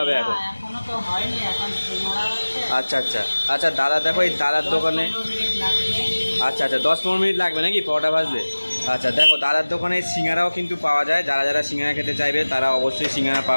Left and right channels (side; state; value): both; inverted; correlation -1.00